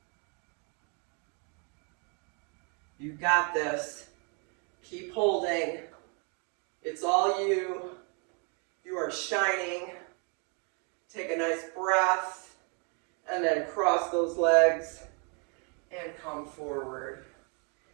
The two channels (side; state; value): left; quieter; 36.7 dB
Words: You got this. Keep holding. It's all you. You are shining. Take a nice breath, and then cross those legs and come forward.